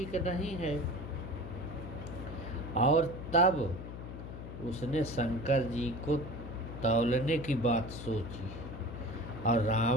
नहीं है, और तब उसने शंकर जी को तौलने की बात सोची और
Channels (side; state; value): left; noise; hum, 9 dB below the sound